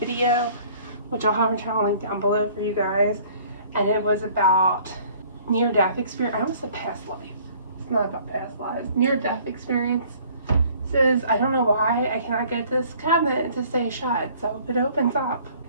which I'll have her channel link down below for you guys, and it was about near-death experience. I almost said past life. It's not about past lives. Near-death experience. I don't know why I cannot get this cabinet to stay shut, so it opens up.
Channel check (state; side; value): inverted; both; correlation -0.54